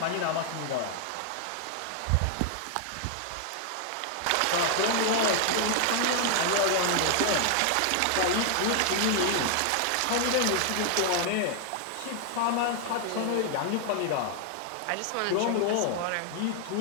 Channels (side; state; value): both; different; correlation 0.00